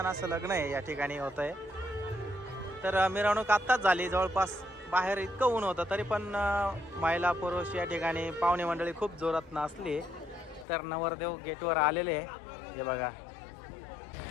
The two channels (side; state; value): right; drops out; at 10.7 s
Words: असं लग्न आहे या ठिकाणी होत आहे। तर मिरवणूक आत्ताच झाली, जवळपास बाहेर इतकं ऊन होतं तरी पण महिला पुरुष या ठिकाणी पाहुणे मंडळी खूप जोरात नाचली। तर नवरदेव गेटवर आलेले आहे हे बघा।